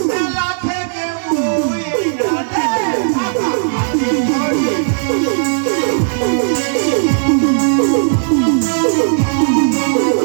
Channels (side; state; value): left; silent; digital silence